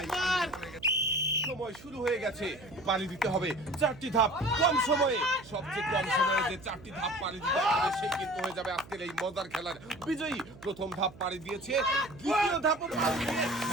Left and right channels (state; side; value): noise; right; hum, 20 dB below the sound